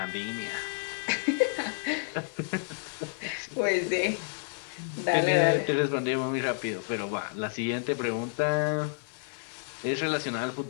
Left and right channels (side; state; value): right; silent; digital silence